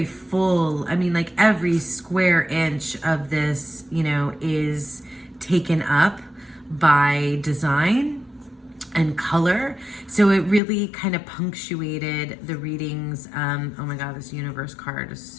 full. I mean, like every square inch of this, is taken up by design and color. So it really kind of punctuated the readings. Oh my God, this universe card is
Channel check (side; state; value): right; drops out; at 10.6 s